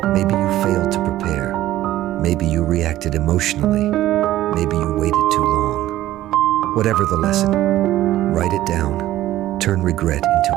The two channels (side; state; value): left; quieter; 14.4 dB